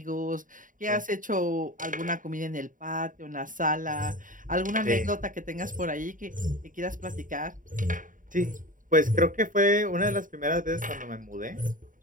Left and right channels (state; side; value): late; left; 0.39 ms